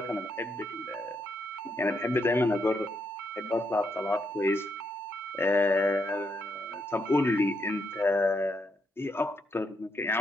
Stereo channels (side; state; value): both; normal; correlation 0.78